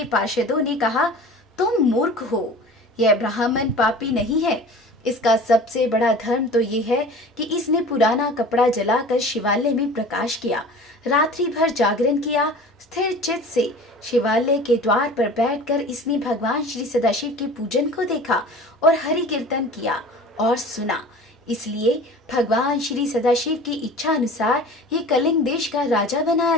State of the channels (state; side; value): normal; both; correlation 0.41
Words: पार्षदों ने कहा, तुम मूर्ख हो, यह ब्राह्मण पापी नहीं है। इसका सबसे बड़ा धर्म तो ये है कि इसने पुराना कपड़ा जलाकर शिवालय में प्रकाश किया, रात्रि भर जागरण किया। स्थिर चित्त से शिवालय के द्वार पर बैठकर इसने भगवान श्री सदाशिव के पूजन को देखा और हरि कीर्तन किया और सुना। इसलिए भगवान श्री सदाशिव की इच्छा अनुसार ये कलिंग देश का राजा बनाया